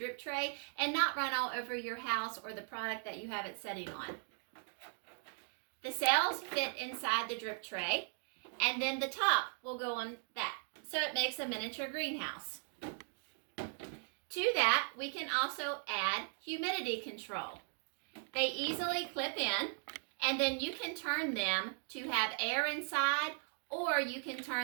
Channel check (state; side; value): silent; left; 52 dB below the other